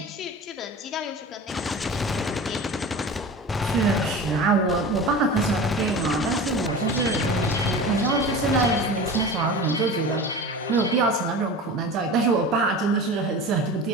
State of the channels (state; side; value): normal; both; correlation 0.33